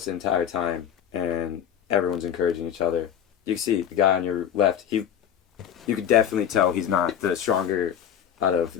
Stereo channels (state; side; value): quieter; right; 9.2 dB